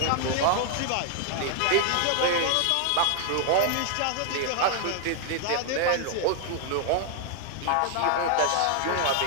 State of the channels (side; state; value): both; different; correlation 0.00